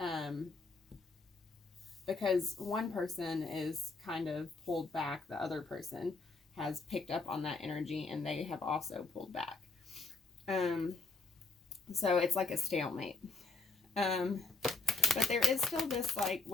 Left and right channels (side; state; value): right; quieter; 3.8 dB